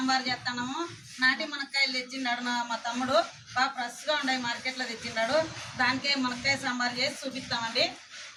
చేస్తున్నాము. నాటి మునక్కాయలు తెచ్చిండాడు మా తమ్ముడు. బాగా ఫ్రెష్గా ఉన్నాయి, మార్కెట్లో తెచ్చిండాడు. దానికే మునక్కాయ సాంబార్ చేసి చూపిస్తామండి.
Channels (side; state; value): both; identical; correlation 1.00